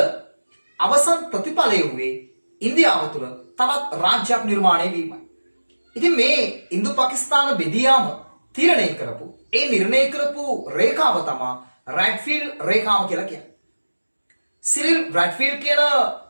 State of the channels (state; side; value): inverted; both; correlation -1.00